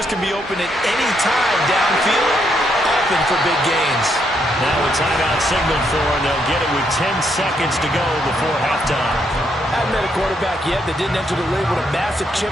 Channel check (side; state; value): both; normal; correlation 0.76